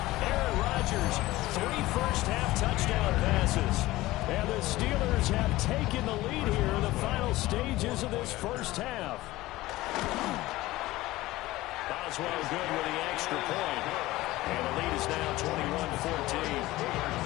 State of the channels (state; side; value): quieter; right; 17.9 dB